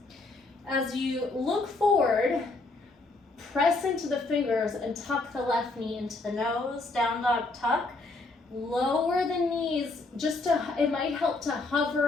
As you look forward, press into the fingers and tuck the left knee into the nose, down dog tuck. Lower the knees, it might help to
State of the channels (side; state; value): right; quieter; 3.3 dB